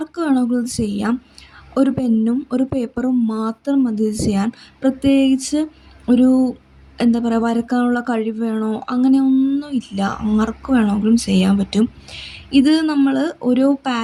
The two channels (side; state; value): both; identical; correlation 1.00